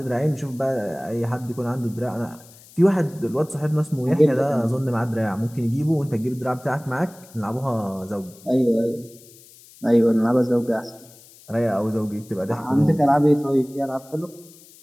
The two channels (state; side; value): noise; left; hiss, 23 dB below the sound